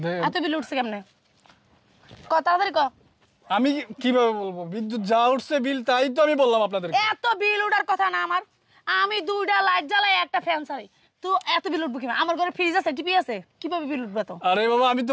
দে- এত বিল উঠছে কেমনে? ক তাড়াতাড়ি ক। আমি কিভাবে বলবো? বিদ্যুৎ যা উঠছে বিল, তাই তো আমি বললাম আপনাদের। এত বিল উঠার কথা না আমার, আমি 2টা লাইট জ্বালাই একটা ফ্যান চালাই, তো এত বিল উঠবো কিভাবে? আমার ঘরে ফ্রিজ আছে, টিভি আছে, কিভাবে বিল উঠবে? তো আরে বাবা, আমি তো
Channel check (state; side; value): identical; both; correlation 1.00